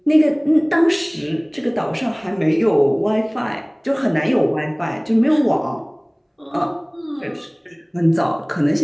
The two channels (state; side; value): identical; both; correlation 1.00